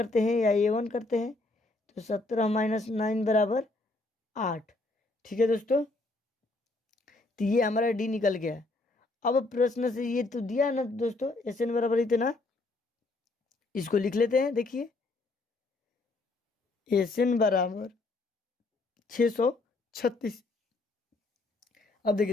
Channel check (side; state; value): right; quieter; 3.1 dB